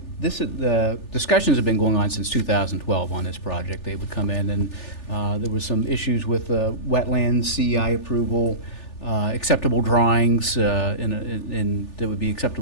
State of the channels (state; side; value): late; right; 3.4 ms